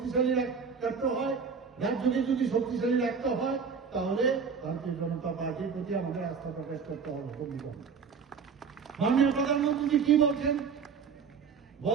রাখতে হয়, রাজ্যকে যদি শক্তিশালী রাখতে হয়, তাহলে ভারতীয় জনতা পার্টির প্রতি আমাদের আস্থা প্রকাশ করতে হবে। মাননীয় প্রধানমন্ত্রী কি বলছেন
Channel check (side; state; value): left; quieter; 5.9 dB